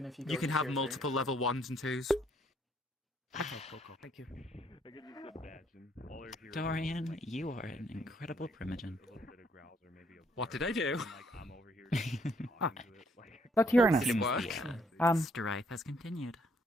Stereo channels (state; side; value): normal; both; correlation 0.67